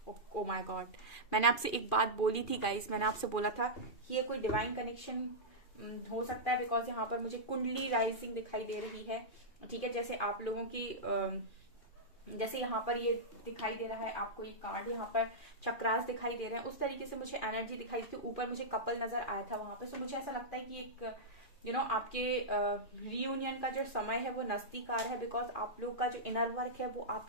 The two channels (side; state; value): right; late; 2.4 ms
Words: Oh my God, मैंने आपसे एक बात बोली थी गाइस, मैंने आपसे बोला था कि ये कोई डिवाइन कनेक्शन हो सकता है, बिकॉज यहाँ पर मुझे कुंडली राइजिंग दिखाई दे रही है। ठीक है, जैसे आप लोगों की जैसे यहाँ पर ये दिखाई दे रहा है आपको, ये कार्ड यहाँ पर चक्रास दिखाई दे रहे हैं, उस तरीके से मुझे एनर्जी दिखाई दी थी। ऊपर मुझे कपल नजर आया था वहां पे। सो मुझे ऐसा लगता है कि एक आपके रियूनियन का जो समय है वो नजदीक आ रहा है, बिकॉज आप लोग का जो इनर वर्क है वो